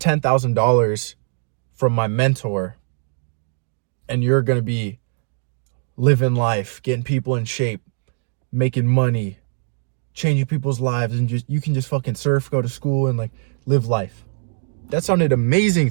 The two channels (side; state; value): left; silent; digital silence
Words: from my mentor, and you're going to be living life, getting people in shape, making money, changing people's lives, and you can just fucking surf, go to school, and live life. That sounded amazing